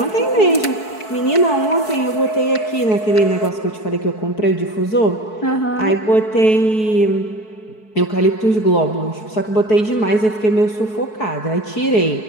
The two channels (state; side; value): late; right; 4.6 ms